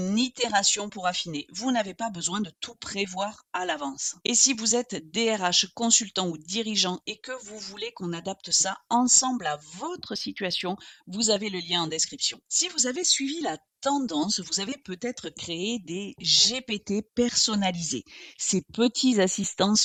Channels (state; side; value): identical; both; correlation 1.00